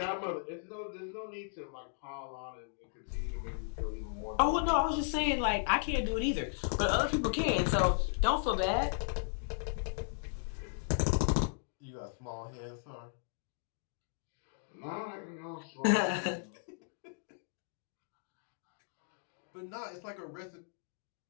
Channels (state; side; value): silent; right; digital silence